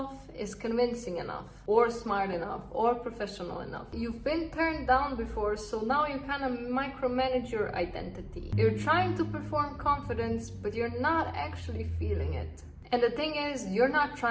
is convincing enough, or smart enough, or professional enough. You've been turned down before, so now you kind of micromanage your identity. You're trying to perform confidence, but you're not actually feeling it. And the thing is, you're not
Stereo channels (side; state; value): both; identical; correlation 1.00